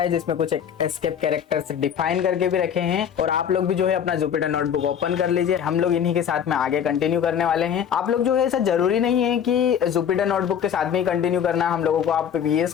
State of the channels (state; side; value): quieter; right; 8.5 dB